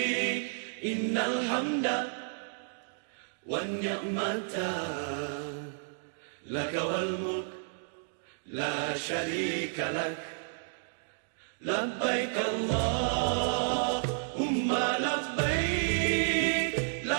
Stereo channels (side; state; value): left; silent; digital silence